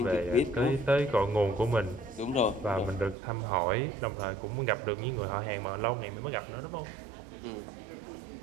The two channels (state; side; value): drops out; left; at 3.2 s